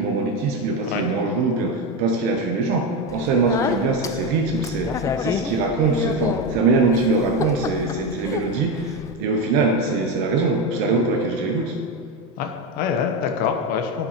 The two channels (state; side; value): normal; both; correlation 0.14